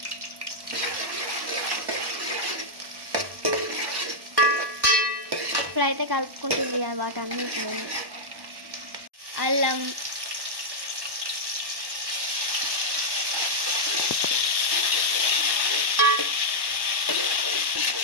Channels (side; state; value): left; late; 1.1 ms